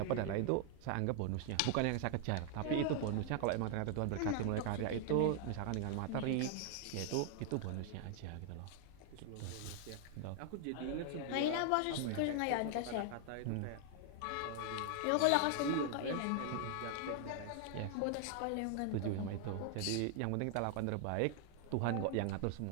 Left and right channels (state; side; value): different; both; correlation 0.00